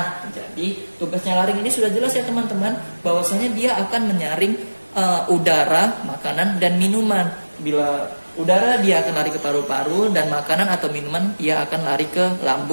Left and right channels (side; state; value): both; inverted; correlation -1.00